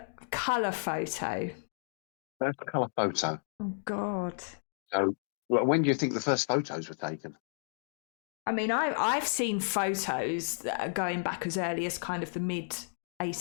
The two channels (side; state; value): right; silent; digital silence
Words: colour photo. First colour photo. Oh, God. So when do you think the first photos were taken? I mean, I've seen photos that are going back as early as kind of the mid